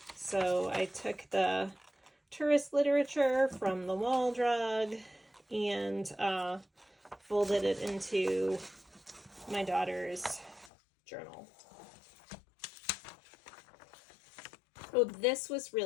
So I took the tourist literature from the Wall Drug and folded it into my daughter's journal. Oh, this was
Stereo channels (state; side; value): drops out; right; at 10.7 s